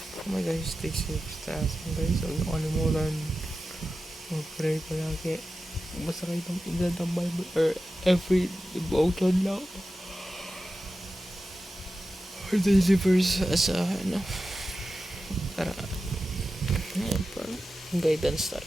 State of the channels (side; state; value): both; normal; correlation 0.93